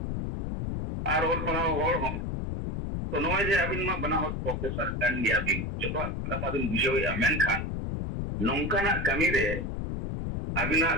आर ओल पढ़ाव होड़ हो तो नोए जे अबिन मा बना हो प्रोफेसर कन गया बिन जतो कथा बिन बुझोया मेनखान नौकाना कमी रे अबिना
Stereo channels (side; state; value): left; noise; rumble, 3 dB below the sound